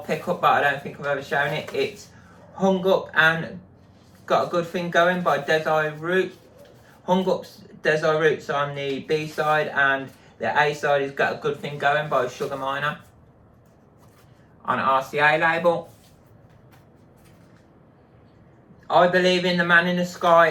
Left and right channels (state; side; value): identical; both; correlation 1.00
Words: pickup, but I don't think I've ever shown it. It's Hung Up and Got a Good Thing Going by Desire Root. Hung Up's Desire Root's on the B side, and the A side has Got a Good Thing Going by Sugar Miner on RCA label. I Believe in the Man in the Sky